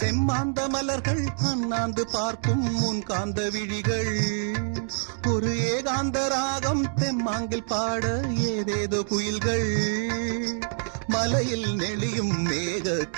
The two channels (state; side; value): silent; left; digital silence